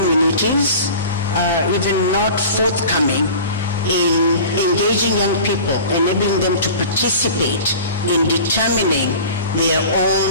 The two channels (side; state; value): both; inverted; correlation -0.39